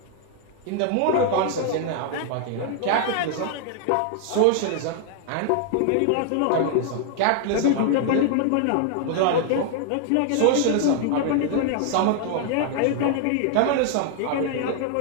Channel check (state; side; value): different; both; correlation 0.00